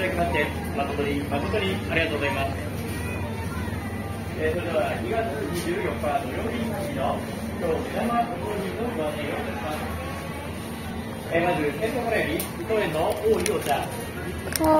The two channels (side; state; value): both; identical; correlation 1.00